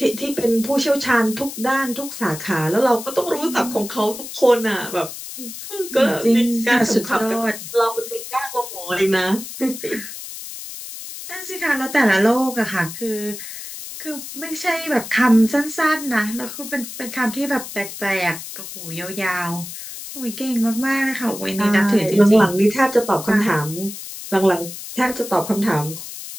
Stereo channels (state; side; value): noise; left; hiss, 11 dB below the sound